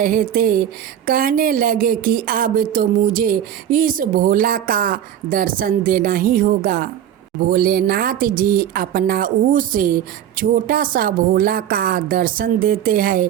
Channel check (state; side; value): quieter; left; 10.3 dB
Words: थे। कहने लगे कि अब तो मुझे इस भोला का दर्शन देना ही होगा। भोलेनाथ जी अपना उस छोटा सा भोला का दर्शन देते हैं